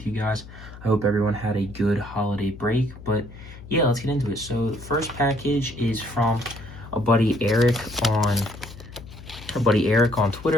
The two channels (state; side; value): noise; left; hum, 16 dB below the sound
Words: you guys. I hope everyone had a good holiday break, but yeah, let's get into it. So the first package is from a buddy Eric on